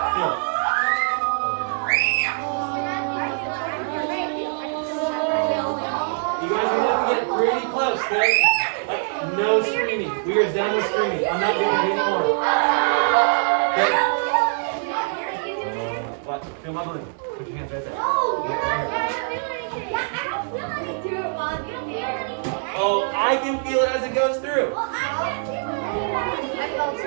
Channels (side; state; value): left; silent; 63 dB below the other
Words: feel. You guys are gonna have to get pretty close, okay? Like, no screaming. We are done with screaming. I'm not doing it anymore. Okay? Watch. Feel my balloon. Put your hands right there. Oh, I can feel it as it goes through.